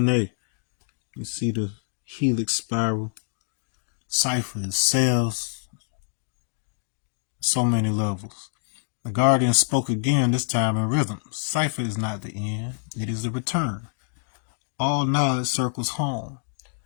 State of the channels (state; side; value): silent; right; digital silence